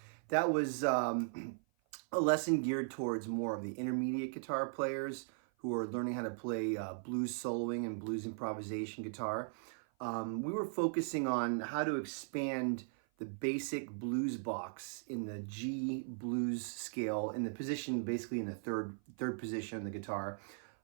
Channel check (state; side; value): silent; left; 52 dB below the other